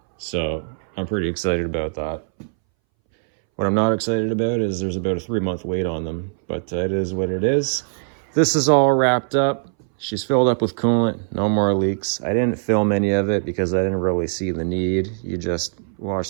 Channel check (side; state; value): left; silent; 62 dB below the other